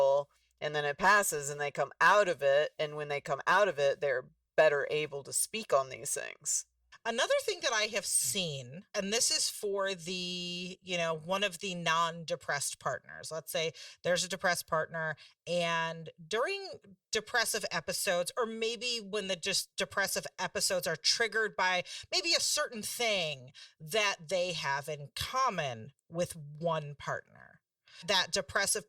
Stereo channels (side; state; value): both; identical; correlation 1.00